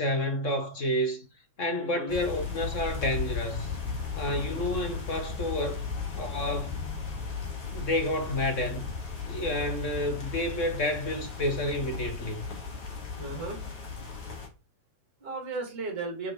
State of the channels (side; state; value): right; late; 3.7 ms